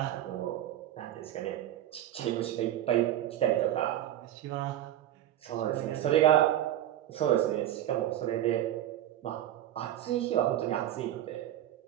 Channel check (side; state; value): left; quieter; 12.4 dB